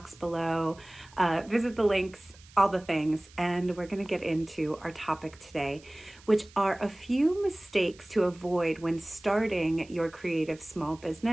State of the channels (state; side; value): noise; right; hiss, 24 dB below the sound